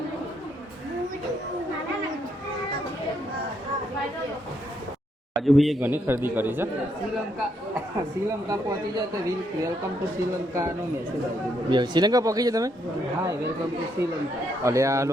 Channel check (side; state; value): both; normal; correlation 0.75